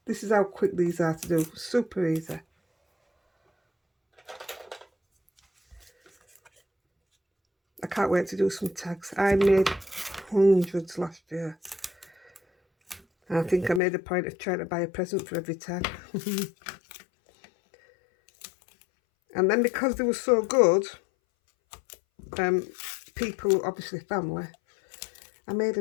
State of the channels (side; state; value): right; drops out; at 13.8 s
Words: This is how quick these are to do. Super easy. I can't wait to do some tags. I made hundreds last year. I think I made a point of trying to buy a present for every tag. And then because they were so good, people, obviously family, I made